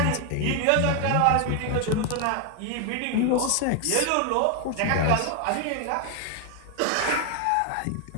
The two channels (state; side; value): different; both; correlation 0.00